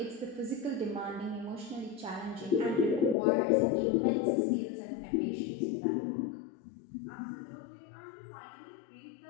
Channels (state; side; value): drops out; right; at 3.2 s